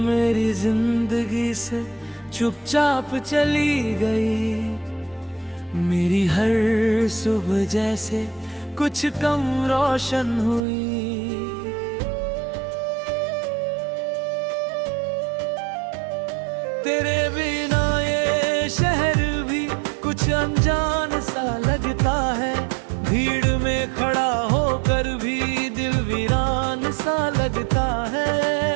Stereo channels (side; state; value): left; drops out; at 10.6 s